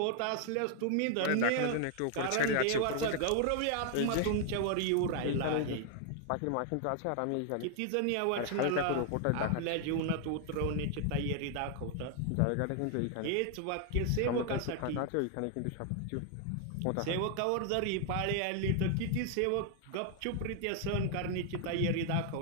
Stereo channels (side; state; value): both; different; correlation 0.00